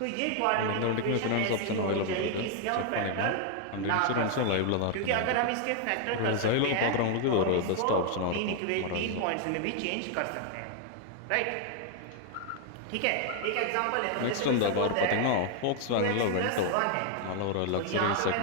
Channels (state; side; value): different; both; correlation 0.00